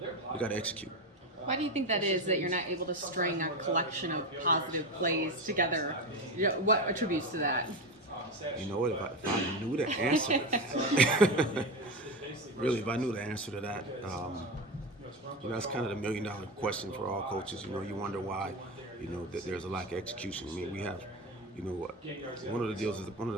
execute. Why do you think that is, that you're not able to string a collection of positive plays together? What attributes to that? If I knew the answer to that, really, if I knew the answer to that, that's kind of the $1 million question for all coaches. You wonder why, that there's a lack of execution. I mean, we have, one of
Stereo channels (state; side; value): normal; both; correlation 0.19